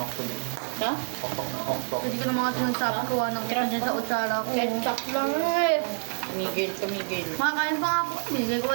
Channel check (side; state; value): left; silent; 60 dB below the other